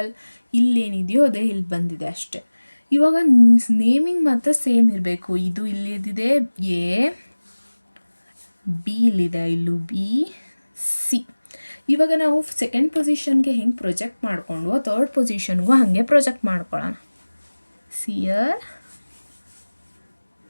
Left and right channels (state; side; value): inverted; both; correlation -1.00